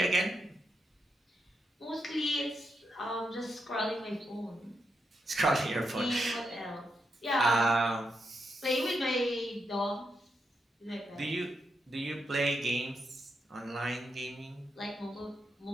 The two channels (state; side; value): normal; both; correlation 0.83